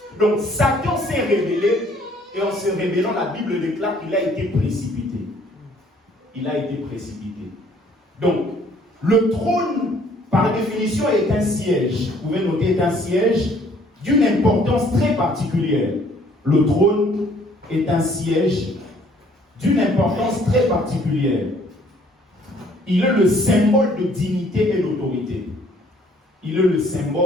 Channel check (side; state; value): both; normal; correlation 0.60